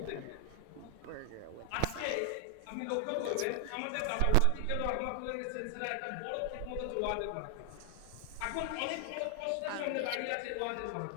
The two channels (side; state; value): both; different; correlation 0.00